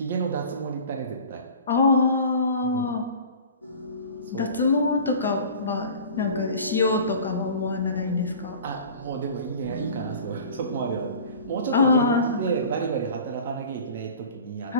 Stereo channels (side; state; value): both; inverted; correlation -0.41